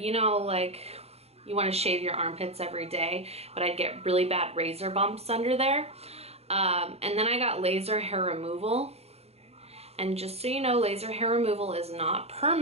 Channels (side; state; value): left; late; 0.30 ms